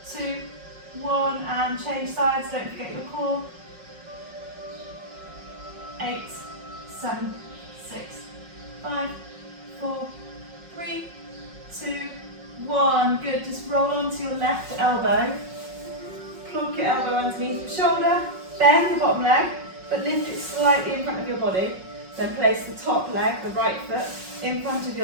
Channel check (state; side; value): late; left; 5.4 ms